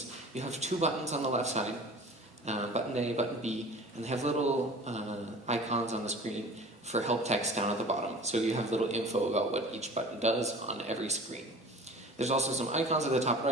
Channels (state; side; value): normal; both; correlation 0.42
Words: You have two buttons on the left side, button A, button B, and they have little icons on the screen for help text down at the bottom. So you have little info about what each button does on every screen. There's also some icons at the top